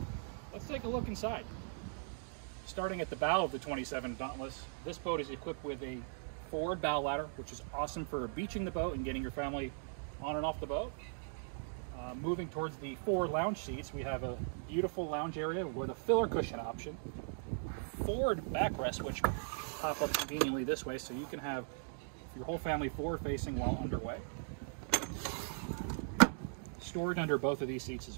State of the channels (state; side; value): silent; left; digital silence